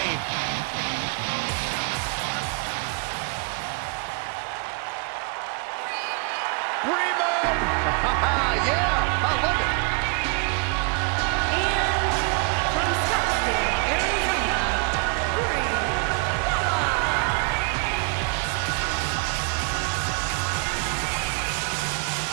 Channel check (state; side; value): quieter; left; 32.7 dB